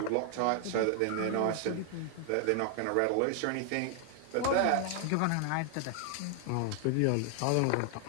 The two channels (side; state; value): both; different; correlation 0.00